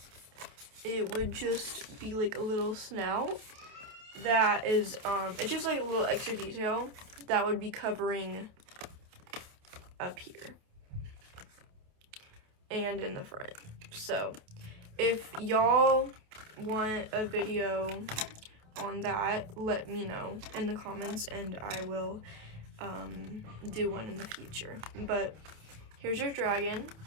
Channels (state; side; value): late; left; 28 ms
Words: It would just be like a little snout that is, it's just like a little extra detail that would be covering up here and in the front. So if y'all want a video on that, let me know in the comments and I will do one in the future. But here's your dragon.